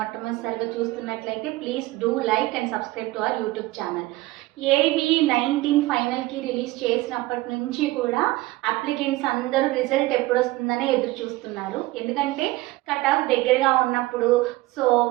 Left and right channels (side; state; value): left; quieter; 19.0 dB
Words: చూస్తున్నట్లయితే please do like and subscribe to our YouTube channel. AB19 ఫైనల్కి release చేసినప్పటి నుంచి కూడా అప్లికెంట్స్ అందరూ రిజల్ట్ ఎప్పుడు వస్తుందని ఎదురు చూస్తున్నారు. ఎందుకంటే కట్ ఆఫ్ దగ్గరగా ఉన్నప్పుడు సో